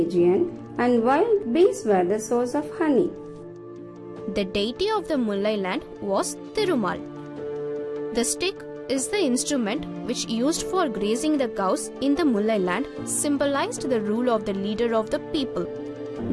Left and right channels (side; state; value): both; identical; correlation 1.00